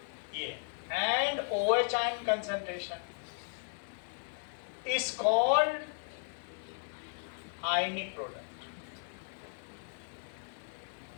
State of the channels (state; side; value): silent; right; digital silence